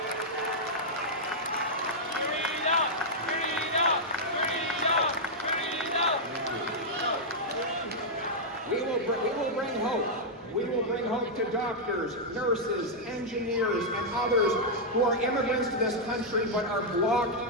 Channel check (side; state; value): both; normal; correlation -0.06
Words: We will bring hope to doctors, nurses, engineers, and others who are immigrants to this country but are